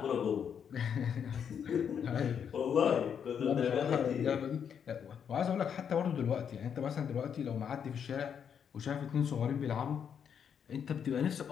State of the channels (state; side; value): quieter; right; 7.8 dB